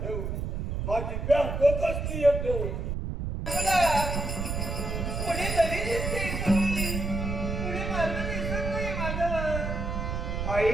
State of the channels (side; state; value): right; noise; rumble, 3 dB below the sound